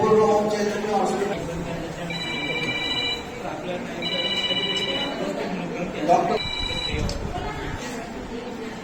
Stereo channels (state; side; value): identical; both; correlation 1.00